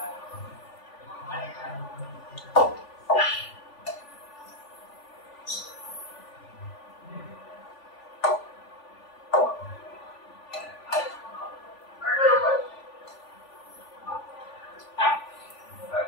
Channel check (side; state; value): right; late; 3.4 ms